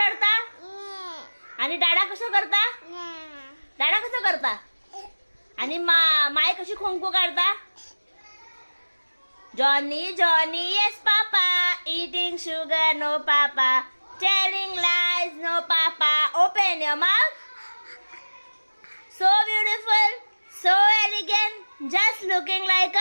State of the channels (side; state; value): both; inverted; correlation -1.00